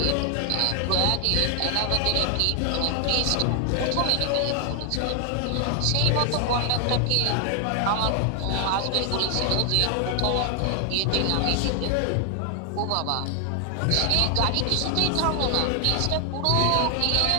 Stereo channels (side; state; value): both; different; correlation 0.00